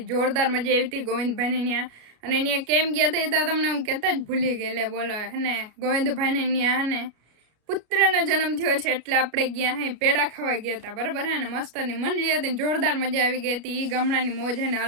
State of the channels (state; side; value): late; left; 33 ms